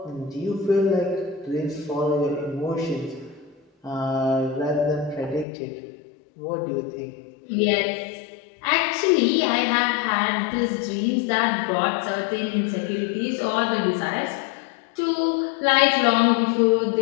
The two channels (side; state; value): right; drops out; at 5.5 s